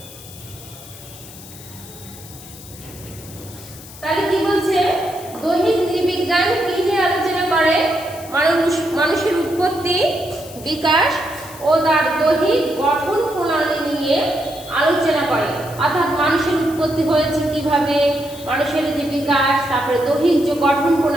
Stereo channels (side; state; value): left; noise; hiss, 17 dB below the sound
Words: তাহলে কি বলছে? দৈহিক নৃবিজ্ঞান কি নিয়ে আলোচনা করে? মানুষের উৎপত্তি, বিকাশ ও তার দৈহিক গঠন প্রণালী নিয়ে আলোচনা করে। অর্থাৎ মানুষের উৎপত্তি হয়েছে কিভাবে, মানুষের যে বিকাশ, তারপরে দৈহিক যে গঠন